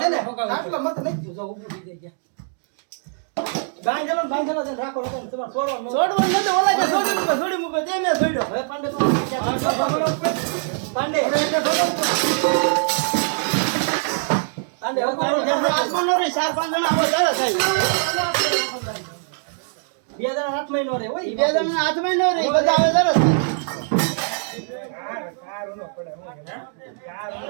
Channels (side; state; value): left; silent; digital silence